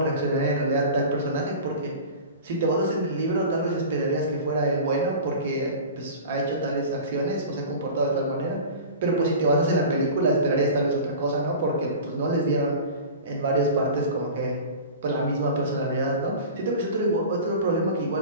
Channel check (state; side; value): inverted; both; correlation -0.35